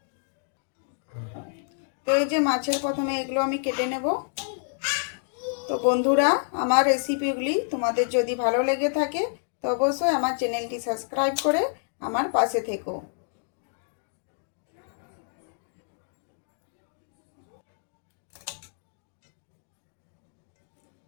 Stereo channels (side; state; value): right; silent; digital silence